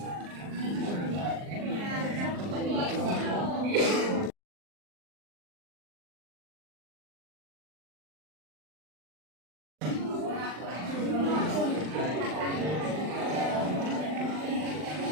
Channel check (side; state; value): left; late; 39 ms